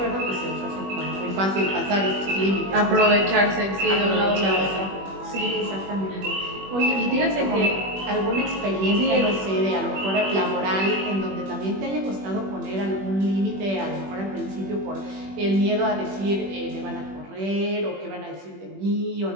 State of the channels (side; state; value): left; late; 21 ms